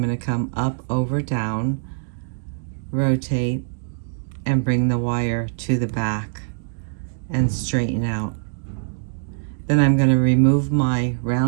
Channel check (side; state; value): left; silent; digital silence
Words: going to come up, over, down, rotate, and bring the wire to the back and straighten out. Then I'm going to remove my